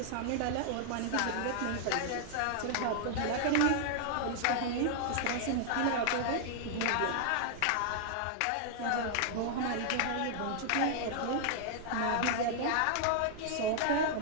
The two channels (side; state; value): both; different; correlation -0.01